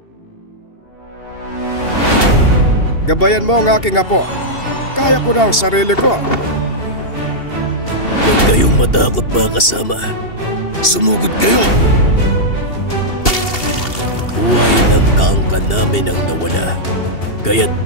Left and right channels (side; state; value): right; late; 2.7 ms